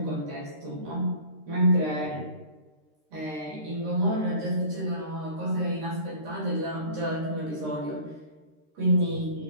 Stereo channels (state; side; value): late; left; 13 ms